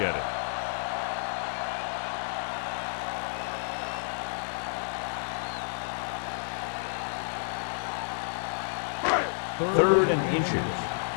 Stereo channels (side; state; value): right; silent; 58 dB below the other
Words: it. Third and inches.